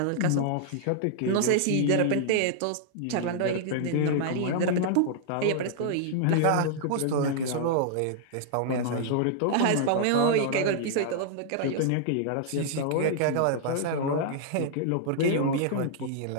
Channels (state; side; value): different; both; correlation -0.01